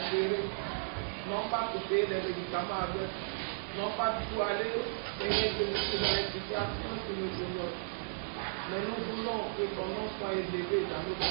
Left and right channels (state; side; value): silent; left; 55 dB below the other